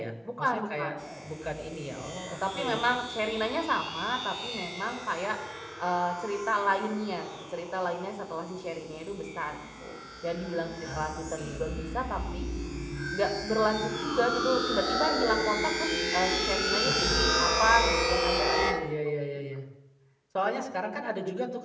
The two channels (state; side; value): identical; both; correlation 1.00